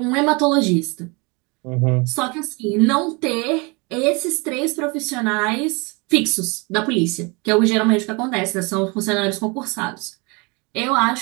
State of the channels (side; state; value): left; quieter; 28.8 dB